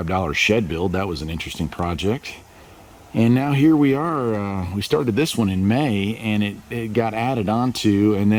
shed build. That was an interesting project. And now here we are. We started this one in May, and it got added onto, and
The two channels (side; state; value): both; identical; correlation 1.00